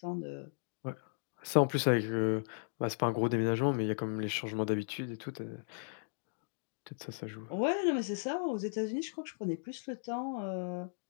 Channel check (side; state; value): right; silent; digital silence